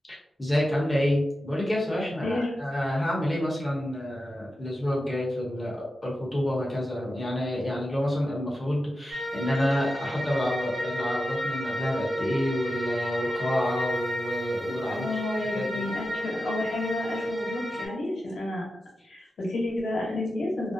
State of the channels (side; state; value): both; normal; correlation 0.91